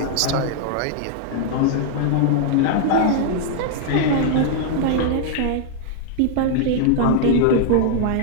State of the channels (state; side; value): different; both; correlation -0.01